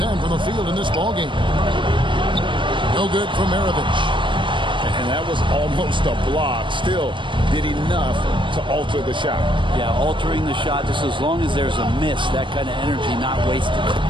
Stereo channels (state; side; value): late; left; 0.24 ms